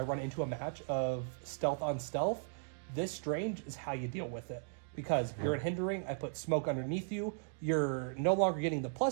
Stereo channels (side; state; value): left; silent; digital silence